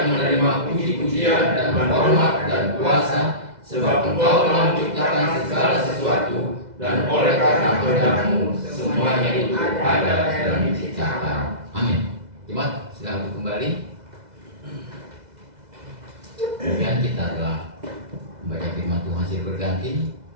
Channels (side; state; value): left; late; 2.0 ms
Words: menerima puji-pujian dan hormat dan kuasa, sebab Engkau telah menciptakan segala sesuatu, dan oleh karena kehendak-Mu semuanya itu ada dan diciptakan. Amin. Jemaat, silakan kembali. Kemudian kita telah membaca firman Tuhan silih berganti,